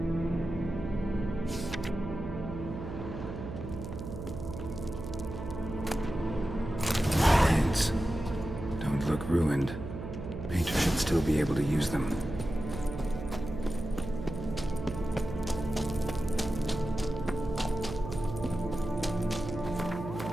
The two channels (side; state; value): right; noise; hum, 8 dB below the sound